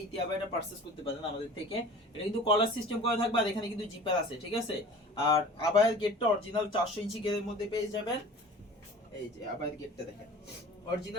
ইতিয়া বায়াটা পারচেজ করতে পারেন আমাদের থেকে। এটা কিন্তু কলার সিস্টেম করা থাকবে আর এখানে কিন্তু জিপার আছে, ঠিক আছে। আর আবায়ের গেটটা অরিজিনাল 400 ইঞ্চি গেরের মধ্যে পেয়ে যাবেন। এই যে আবায়ের গেটটা দেখেন,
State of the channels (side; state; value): both; normal; correlation 0.42